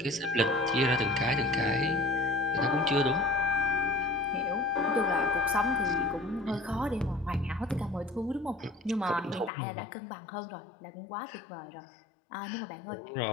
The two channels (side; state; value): right; drops out; at 9.5 s